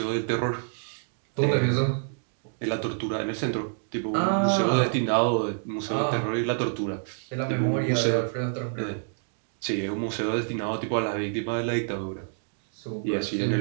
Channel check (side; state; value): left; silent; digital silence